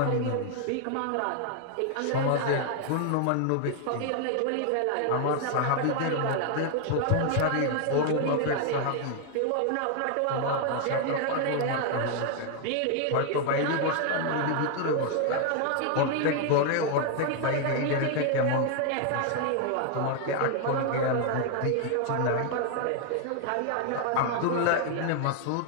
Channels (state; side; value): different; both; correlation 0.00